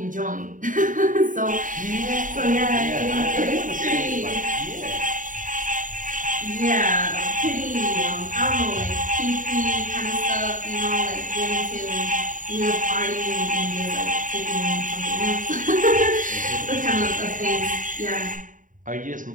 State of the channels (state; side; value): late; left; 0.38 ms